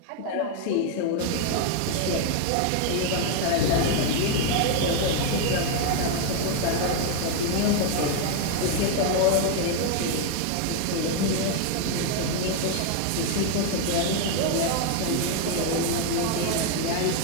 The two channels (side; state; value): both; different; correlation 0.01